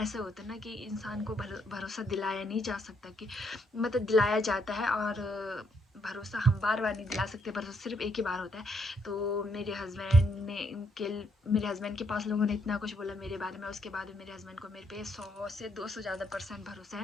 होता है ना कि इंसान को भरोसा दिलाया नहीं जा सकता, कि मतलब दिलाया जाता है, और भरोसा हम बार बार नहीं दिला सकते, भरोसा सिर्फ एक ही बार होता है। तो मेरे हस्बैंड के पास लोगों ने इतना कुछ बोला मेरे बारे में, उसके बाद मेरे हस्बैंड को मेरे पे 100 से 200 ज़्यादा % भरोसा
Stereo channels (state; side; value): normal; both; correlation 0.73